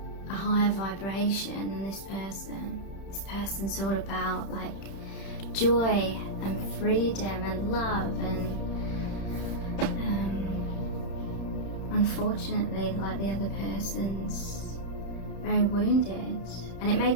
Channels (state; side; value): late; right; 31 ms